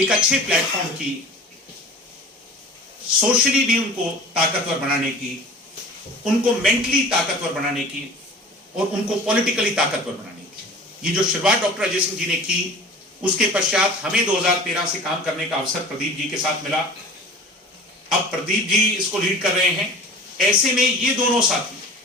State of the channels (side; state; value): both; normal; correlation 0.41